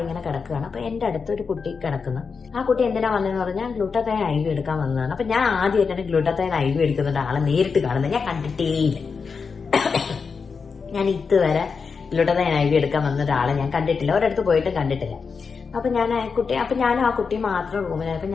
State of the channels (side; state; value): right; quieter; 5.3 dB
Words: ഇങ്ങനെ കിടക്കുകയാണ്. അപ്പൊ എന്റെ അടുത്തൊരു കുട്ടി കിടക്കുന്നു. ആ കുട്ടി എന്തിനാ വന്നതെന്ന് പറഞ്ഞാൽ ഗ്ലൂട്ടാത്തൈൻ IV എടുക്കാൻ വന്നതാണ്. അപ്പൊ ഞാൻ ആദ്യമായിട്ടാണ് ഗ്ലൂട്ടാത്തൈൻ IV എടുക്കുന്നുണ്ട് ആളെ നേരിട്ട് കാണുന്നത്. ഞാൻ കണ്ടിട്ടേയില്ല. ഞാൻ ഇതുവരെ ഗ്ലൂട്ടാത്തൈൻ IV എടുക്കാൻ വന്ന ഒരാളെ ഞാൻ കണ്ടിട്ടില്ല, ഒരിടത്ത് പോയിട്ടും കണ്ടിട്ടില്ല. അപ്പൊ ഞാനും ആ കുട്ടി മാത്രം റൂമിലായി. അപ്പൊ